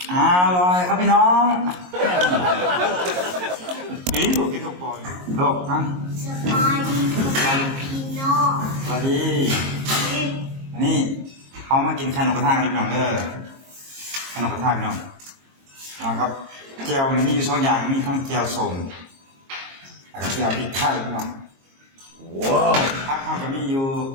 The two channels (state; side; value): late; left; 22 ms